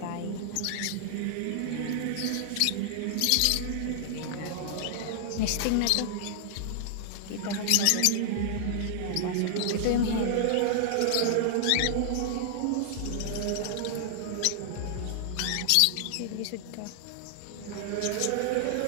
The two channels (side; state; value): both; different; correlation -0.01